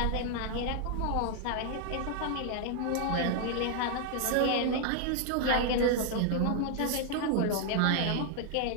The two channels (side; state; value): both; different; correlation 0.00